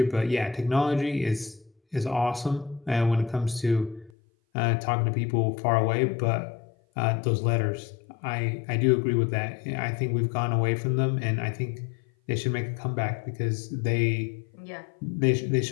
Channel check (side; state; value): right; drops out; at 4.1 s